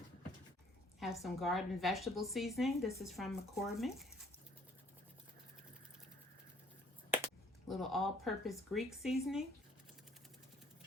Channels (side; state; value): both; normal; correlation 0.60